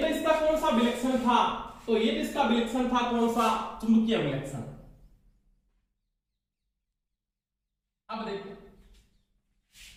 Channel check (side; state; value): both; identical; correlation 1.00